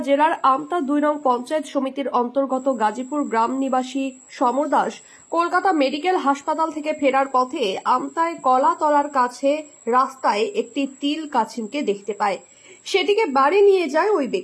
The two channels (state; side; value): identical; both; correlation 1.00